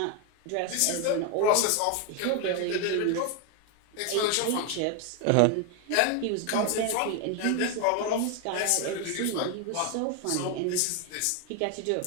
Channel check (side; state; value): both; different; correlation 0.01